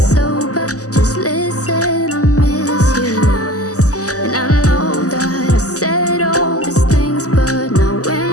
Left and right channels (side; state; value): right; late; 0.66 ms